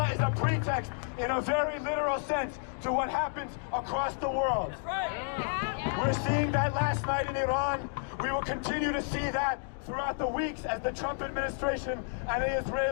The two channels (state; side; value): silent; right; 57 dB below the other